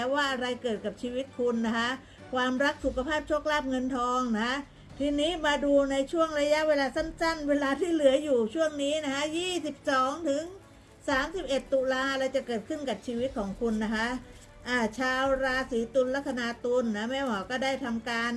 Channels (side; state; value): both; identical; correlation 1.00